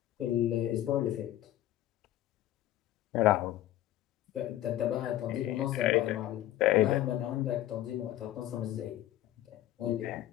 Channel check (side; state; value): right; quieter; 13.6 dB